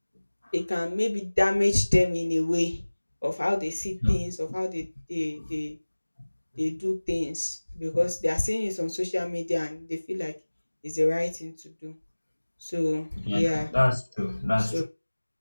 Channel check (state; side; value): inverted; both; correlation -1.00